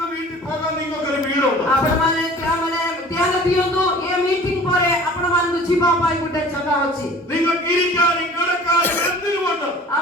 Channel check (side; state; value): both; normal; correlation 0.45